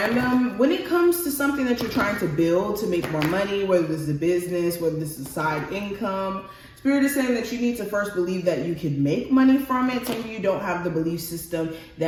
When it comes to something that you're trying to build to make more money, whether this is a business, whether this is side income, Spirit is saying that you need to first believe that you could make money from it. Some of you don't have the belief system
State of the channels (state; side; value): identical; both; correlation 1.00